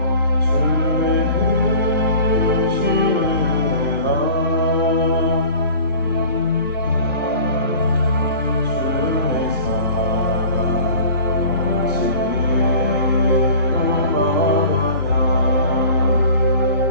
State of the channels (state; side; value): inverted; both; correlation -0.43